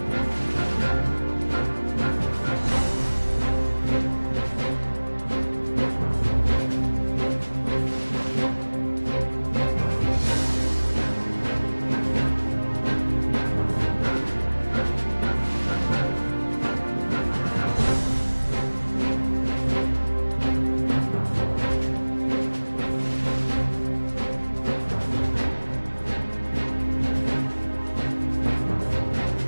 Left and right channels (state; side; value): inverted; both; correlation -1.00